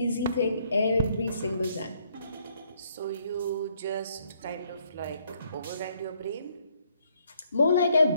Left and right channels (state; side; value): inverted; both; correlation -0.69